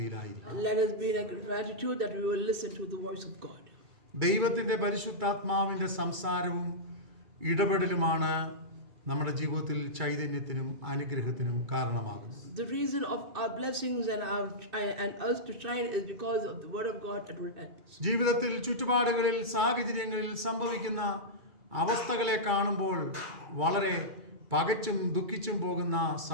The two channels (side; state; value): left; late; 2.3 ms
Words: Let us be in gratitude that we will listen to the voice of God. ദൈവത്തിന്റെ പരിശുദ്ധാത്മാവിന്റെ സംസാരവും ഇടപെടലുമാണ് നമ്മുടെ ജീവിതത്തിൽ ചൈതന്യത്തിനും അനുഗ്രഹത്തിനും കാരണമാകുന്നത്. The reason of our blessings and us to shine is because of the word of God that will help us. ജീവിതത്തിൽ ചുറ്റുപാടുകളിൽ സാഹചര്യങ്ങളിൽ സംഭവിക്കുന്ന അവസ്ഥകളെ കാണുമ്പോൾ വളരെ പകച്ചും ദുഃഖിച്ചും പോകുന്ന